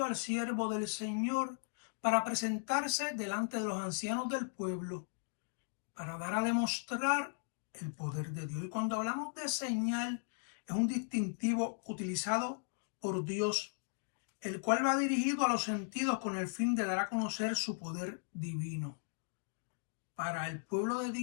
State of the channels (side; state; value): right; silent; digital silence